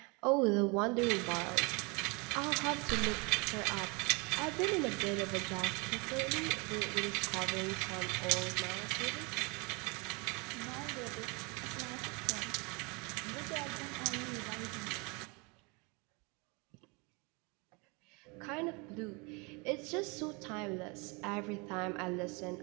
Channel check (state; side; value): quieter; left; 29.7 dB